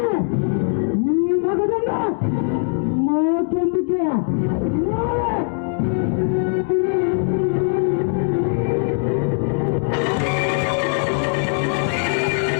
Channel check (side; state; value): right; silent; 57 dB below the other